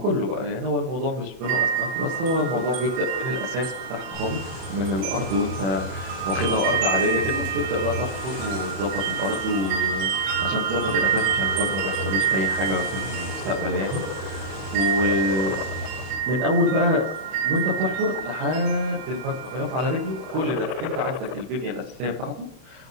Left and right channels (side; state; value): left; late; 31 ms